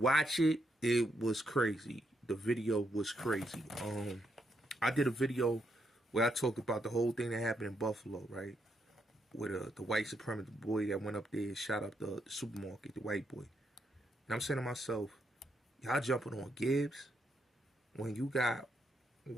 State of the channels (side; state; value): both; normal; correlation 0.78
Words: it, it was crazy. the video was crazy. I did a video where I talked about the whole thing that happened in Buffalo, right? With the white supremacist boy that went up there and shot up the supermarket, the white boy. And I'm saying to myself, y'all jumping on Gibbs when you got